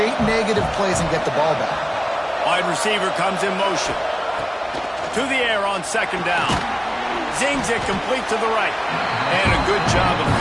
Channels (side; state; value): both; identical; correlation 1.00